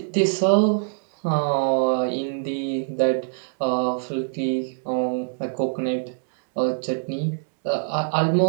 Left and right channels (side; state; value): left; silent; digital silence